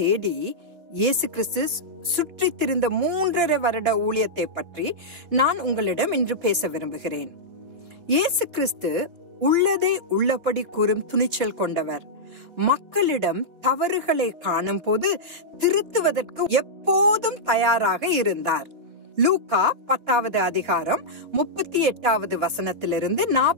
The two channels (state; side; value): late; left; 3.4 ms